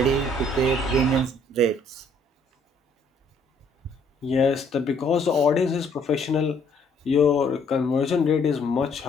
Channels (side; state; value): both; normal; correlation 0.65